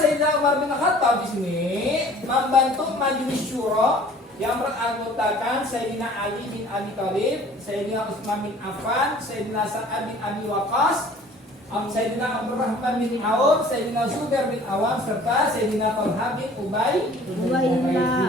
Umar bin Khattab di sini membantu majelis syuro yang beranggotakan Sayyidina Ali bin Abi Thalib, Sayyidina Utsman bin Affan, Sayyidina Sa'ad bin Abi Waqqas, Sayyidina Abdurrahman bin Auf, Sayyidina Zubair bin Awam, serta Sayyidina Talha bin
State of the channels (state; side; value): normal; both; correlation 0.50